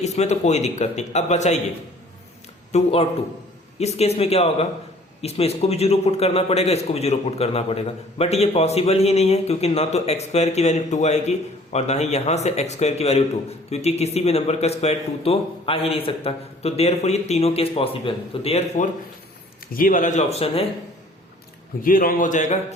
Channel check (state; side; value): normal; both; correlation 0.54